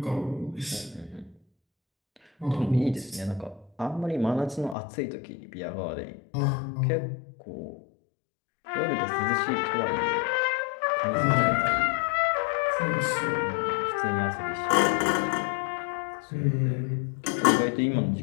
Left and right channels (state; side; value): drops out; right; at 4.8 s